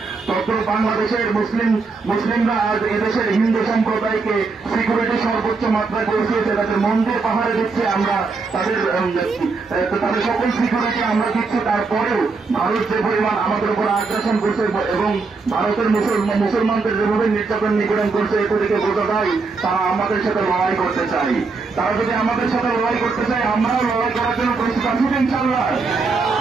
তখন বাংলাদেশের মুসলিমরা আজ এদেশের হিন্দু সম্প্রদায়কে সিকিউরিটি সর্বোচ্চ মাত্রায় পৌঁছিয়েছে। তাদের মন্দির পাহাড়ে দিচ্ছে আমরা, তাদের সকল সিকিউরিটি আমরা দিচ্ছি। তারপরেও ভারত যে পরিমাণ আমাদের উপর আগ্রাসন করছে এবং ভারতের মুসলমানদের যেভাবে নির্যাতন নিপীড়ন করছে, এ থেকে বোঝা যায় তারা আমাদের সাথে লড়াই করতে চাই। তারা যদি আমাদের সাথে লড়াই করতে চায়, আমরাও লড়াই করার জন্য প্রস্তুত আছি ইনশাআল্লাহ।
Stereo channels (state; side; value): quieter; left; 4.3 dB